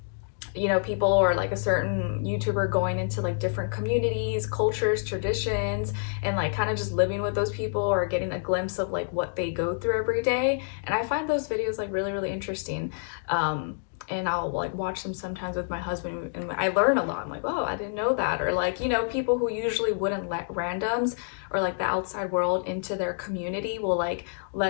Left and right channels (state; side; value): silent; right; digital silence